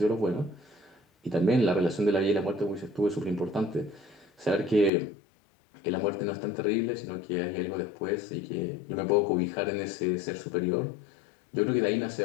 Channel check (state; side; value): drops out; right; at 4.9 s